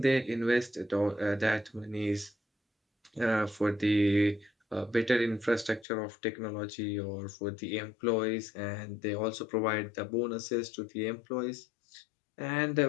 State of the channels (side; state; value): right; drops out; at 5.9 s